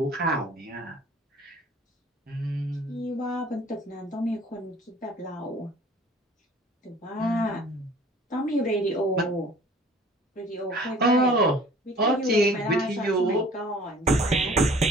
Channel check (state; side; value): normal; both; correlation 0.50